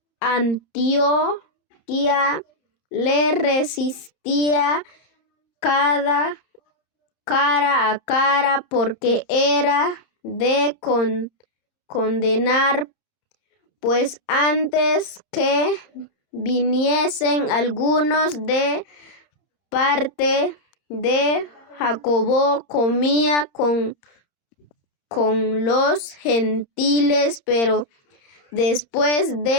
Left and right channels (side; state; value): right; late; 30 ms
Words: le resistía cara a cara, porque era de condenar, pues antes que viniesen algunos de parte de Jacobo, comía con los gentiles, pero después